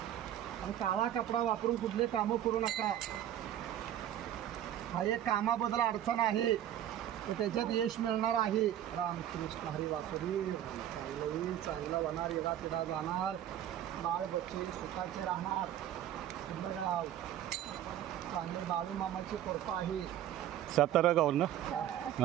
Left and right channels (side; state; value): left; quieter; 11.4 dB